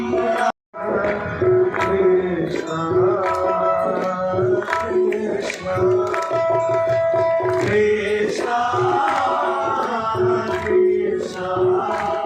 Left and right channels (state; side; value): identical; both; correlation 1.00